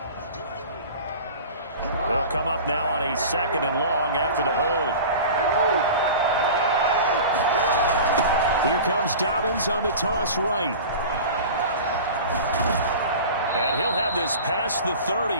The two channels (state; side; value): inverted; both; correlation -0.36